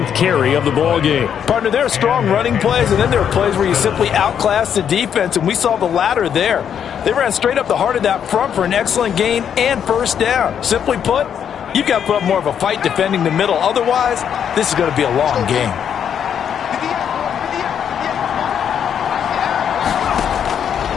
carry of the ball game. Partner, there are strong running plays, and then there are plays where you simply outclass the defense, and we saw the latter there. They ran straight up the heart of that front for an excellent gain and first down. Simply put, you've got to put up more of a fight defending the middle. Otherwise, this is going to be a long game.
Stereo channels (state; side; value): quieter; right; 8.4 dB